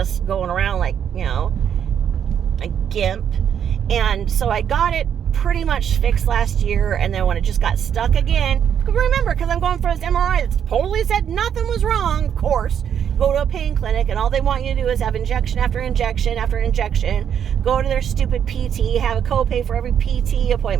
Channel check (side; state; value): left; quieter; 8.6 dB